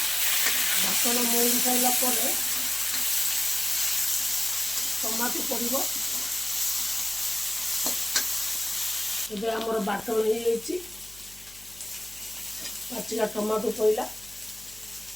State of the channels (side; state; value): left; noise; hum, 24 dB below the sound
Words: बाटन मौड़ी सारा टमाटो पड़ो एबे आमर बाटन हो जाइए पाचिला टमाटो पड़ा